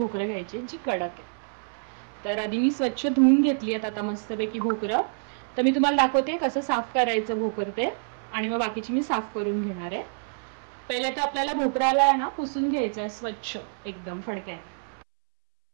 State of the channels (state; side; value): silent; left; 60 dB below the other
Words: घ्यायची जी कडक आहे. तर आधी मी स्वच्छ धुवून घेतली आहेत आता मस्तपैकी भोकरं. तर मी तुम्हाला दाखवते कसं साफ करायचं भोकर ते, आणि मग बाकीची मी साफ करून घेणार आहे. पहिले तर आपल्याला भोकराला आहे ना पुसून घ्यायचं आहे स्वच्छ एकदम फडक्याने.